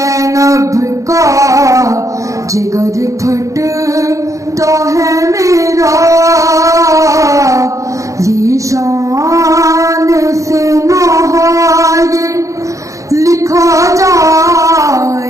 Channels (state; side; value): late; left; 0.15 ms